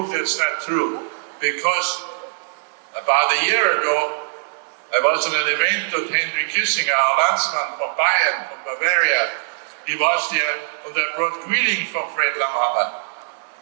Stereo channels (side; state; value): left; silent; digital silence